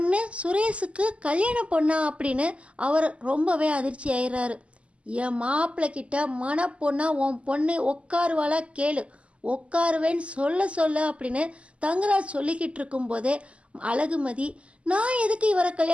சுரேஷுக்கு கல்யாண பொண்ணா அப்படின்னு அவர் ரொம்பவே அதிர்ச்சி ஆயிடுறாரு. என் மாப்பிள்ளை கிட்ட மணப்பொண்ணா உன் பொண்ணு உட்காருவாளா கேளு, உட்காருவேன்னு சொல்ல அப்படின்னு தங்கராஜ் சொல்லிக்கிட்டு இருக்கும்போதே அழகுமதி, நான் எதுக்கு இவரை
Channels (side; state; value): left; late; 0.058 ms